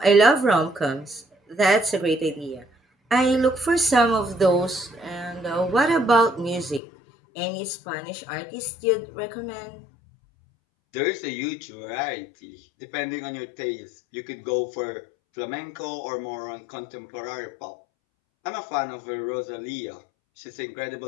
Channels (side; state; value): right; drops out; at 6.8 s